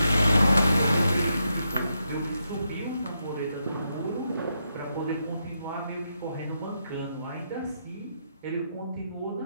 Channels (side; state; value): both; inverted; correlation -0.82